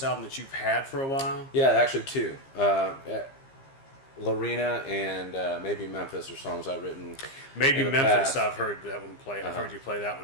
album that you've had for a while? Yeah, actually two. Lorena and maybe Memphis are songs I've written. Maybe in the Memphis, past. I've heard that one play. I've heard you play that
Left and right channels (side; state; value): right; late; 15 ms